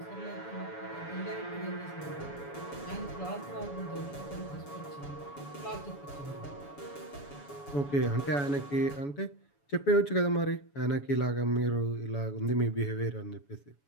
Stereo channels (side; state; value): right; late; 7.1 ms